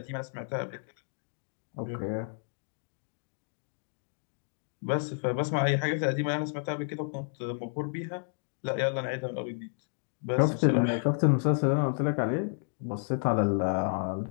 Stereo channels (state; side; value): silent; right; digital silence